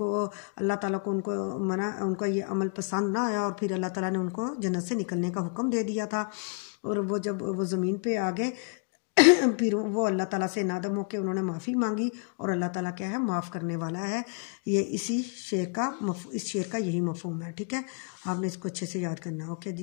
اللہ تعالیٰ کو ان کا یہ عمل پسند نہ آیا اور پھر اللہ تعالیٰ نے ان کو جنت سے نکلنے کا حکم دے دیا تھا، اور وہ جب وہ زمین پہ آ گئے پھر وہ اللہ تعالیٰ سے نادم ہو کے انہوں نے معافی مانگی، اور اللہ تعالیٰ کیا ہے، معاف کرنے والا ہے۔ یہ اس شعر کا یہی مفہوم ہے۔ ٹھیک ہے، آپ نے اس کو اچھے سے یاد کرنا ہے۔ اوکے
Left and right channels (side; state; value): right; quieter; 35.1 dB